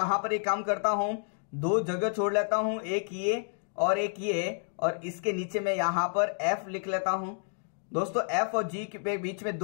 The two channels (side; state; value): right; silent; digital silence